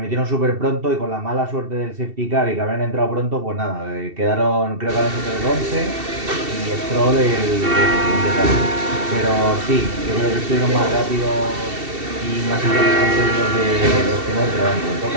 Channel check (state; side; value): late; left; 2.7 ms